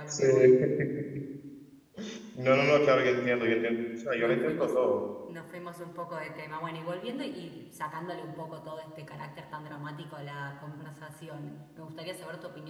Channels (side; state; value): both; identical; correlation 1.00